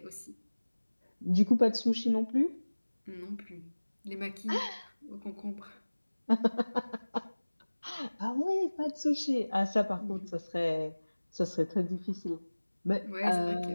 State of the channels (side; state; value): both; inverted; correlation -1.00